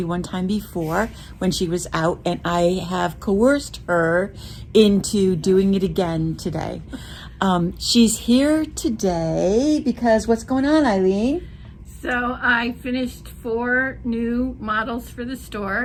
one time before when she was out, and I have coerced her into doing it again today. She's here today because what's going on, Eileen? So I finished 4 new models for the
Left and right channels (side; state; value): both; identical; correlation 1.00